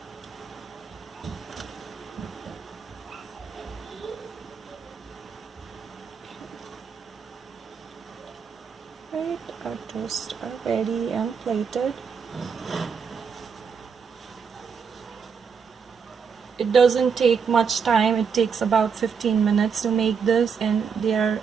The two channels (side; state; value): left; quieter; 6.2 dB